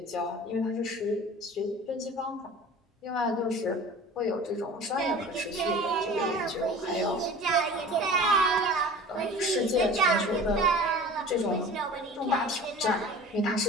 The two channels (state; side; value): normal; both; correlation 0.41